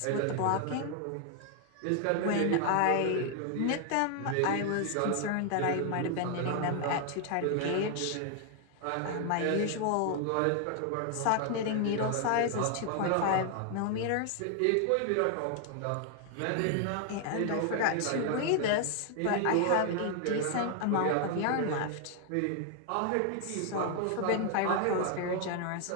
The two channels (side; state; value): both; different; correlation 0.00